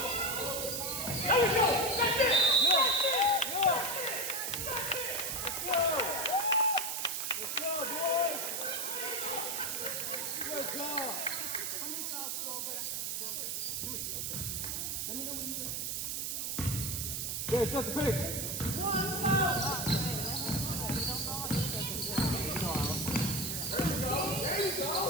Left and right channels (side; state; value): right; noise; hiss, 2 dB below the sound